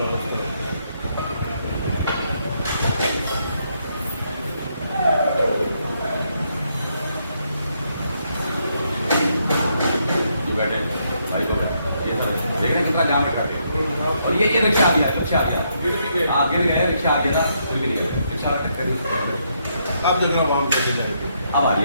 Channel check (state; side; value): inverted; both; correlation -0.76